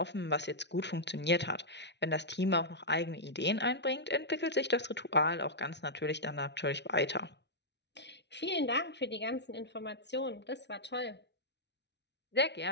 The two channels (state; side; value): late; right; 0.50 ms